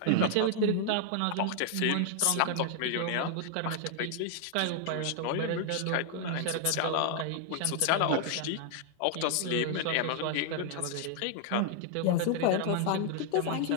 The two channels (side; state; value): both; different; correlation 0.00